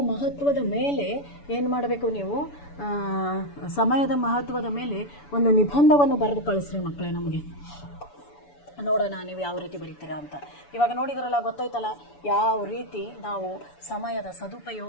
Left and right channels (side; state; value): right; late; 7.0 ms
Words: ಮಹತ್ವದ ಮೇಲೆ ಏನು ಮಾಡಬೇಕು ನೀವು, ಸಮಯದ ಮಹತ್ವದ ಮೇಲೆ ಒಂದು ನಿಬಂಧವನ್ನು ಬರೆದು ಕಳಿಸ್ರಿ ಮಕ್ಕಳೇ ನಮಗೆ. ನೋಡೋಣ ನೀವು ಯಾವ ರೀತಿ ಬರೀತೀರಾ ಅಂತ. ಇವಾಗ ನೋಡಿದ್ರಲ್ಲ, ಗೊತ್ತಾಯ್ತಲ್ಲ ಯಾವ ರೀತಿ ನಾವು ಸಮಯದ